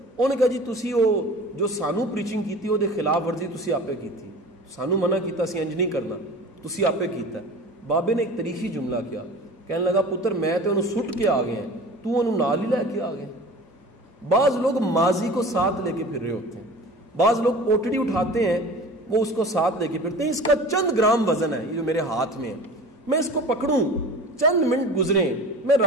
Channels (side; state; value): both; normal; correlation 0.39